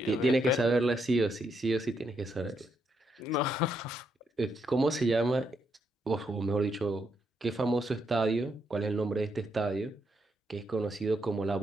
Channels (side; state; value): both; normal; correlation 0.78